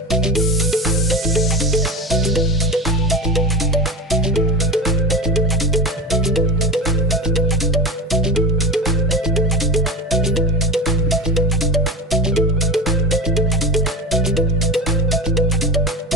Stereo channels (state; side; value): normal; both; correlation 0.25